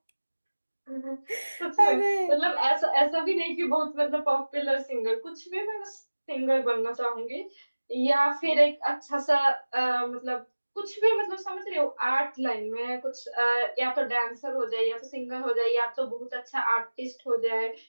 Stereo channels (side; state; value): both; inverted; correlation -1.00